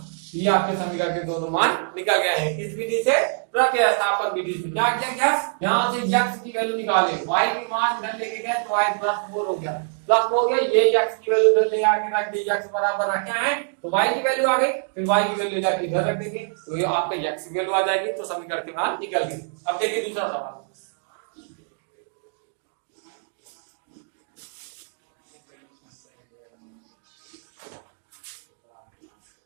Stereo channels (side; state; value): left; silent; digital silence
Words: ये आपके समीकरण के दोनों मान निकल गए हैं। किस विधि से, प्रतिस्थापन विधि से। क्या किया गया, यहाँ से x की वैल्यू निकाले, y के मान इधर लेके गए तो y प्लस 4 हो गया, प्लस हो गया, ये x की वैल्यू इधर ले आके रख दी, x बराबर रखे हैं तो y की वैल्यू आ गई, फिर y की वैल्यू जाके इधर रख देंगे तो ये आपका x की वैल्यू आ जाएगी, तो समीकरण के मान निकल गए। अब देखिए दूसरा सवाल,